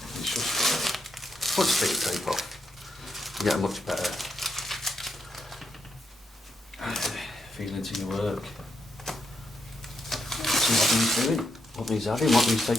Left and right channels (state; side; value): normal; both; correlation 0.80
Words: It's just, once you take the tape off, you get a much better feeling to your work. See what needs doing, what needs adding, what needs